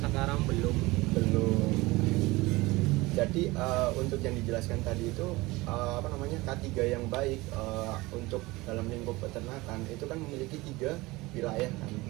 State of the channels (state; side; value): quieter; left; 21.4 dB